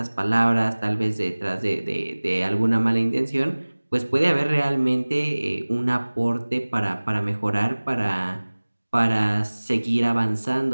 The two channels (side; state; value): both; inverted; correlation -1.00